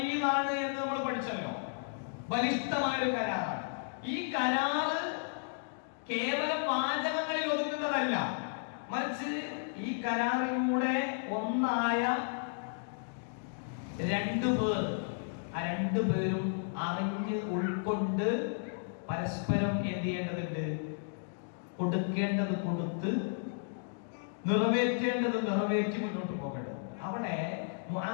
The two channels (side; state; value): right; silent; digital silence